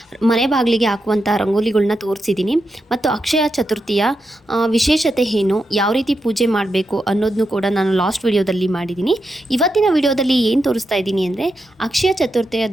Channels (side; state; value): both; normal; correlation 0.86